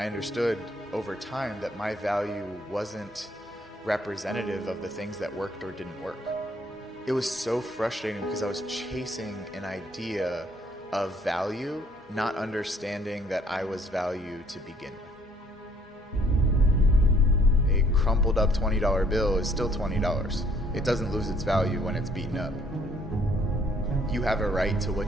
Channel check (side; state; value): both; normal; correlation 0.63